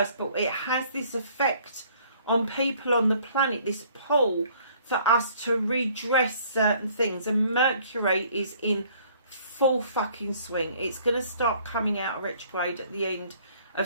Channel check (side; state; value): both; inverted; correlation -0.58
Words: But it has this effect on people on the planet, this pull for us to redress certain things. And Mercury is in full fucking swing. It's going to start coming out of retrograde at the end